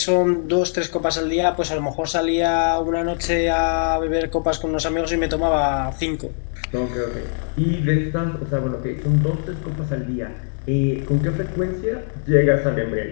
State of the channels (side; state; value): right; silent; digital silence